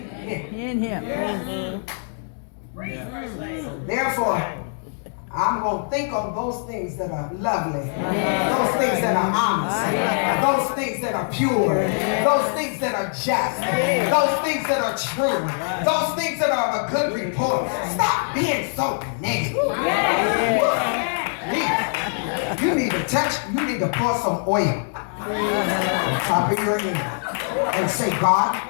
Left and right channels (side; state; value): right; silent; 63 dB below the other